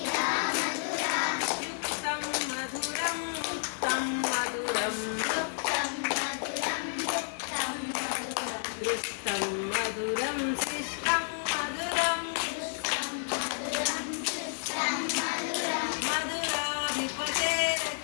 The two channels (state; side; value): silent; right; digital silence